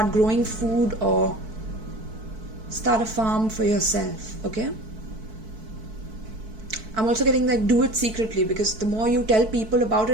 growing food, or start a farm for yourself, okay? I'm also getting like do it secretly, because the more you tell people about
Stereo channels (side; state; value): left; late; 4.6 ms